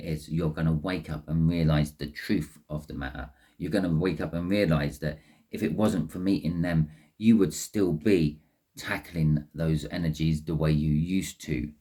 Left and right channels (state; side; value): identical; both; correlation 1.00